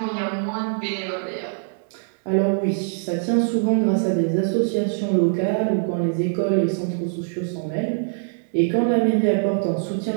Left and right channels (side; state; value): left; silent; digital silence